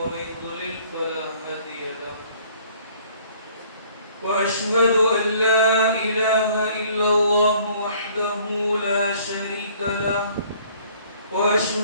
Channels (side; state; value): both; inverted; correlation -0.57